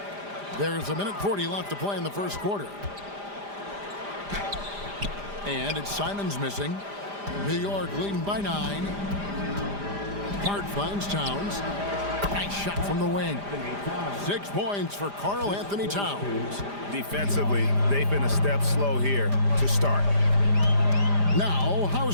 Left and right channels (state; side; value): late; left; 5.0 ms